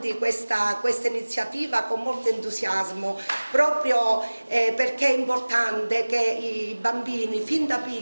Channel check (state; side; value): inverted; both; correlation -1.00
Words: questa iniziativa con molto entusiasmo, proprio perché è importante che i bambini fin da